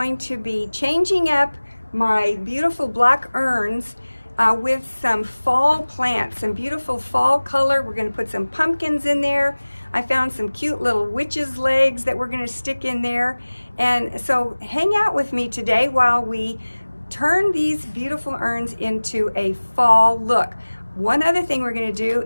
to be changing up my beautiful black urns with some fall plants, some beautiful fall color. We're going to put some pumpkins in there. I found some cute little witch's legs that we're going to stick in there, and so hang out with me today while we turn these beautiful urns into a fall look. One other thing we're going to do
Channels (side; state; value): both; inverted; correlation -1.00